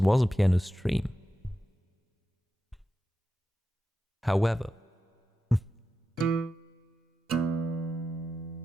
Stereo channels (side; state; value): both; normal; correlation 0.91